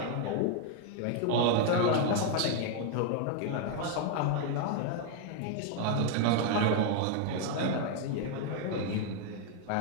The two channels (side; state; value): both; different; correlation 0.00